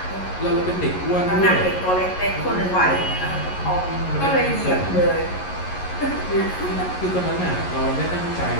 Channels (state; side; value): late; right; 11 ms